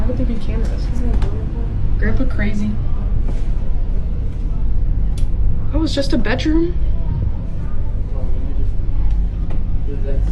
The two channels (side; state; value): both; identical; correlation 1.00